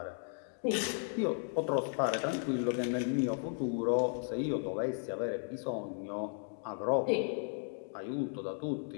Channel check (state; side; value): silent; right; 54 dB below the other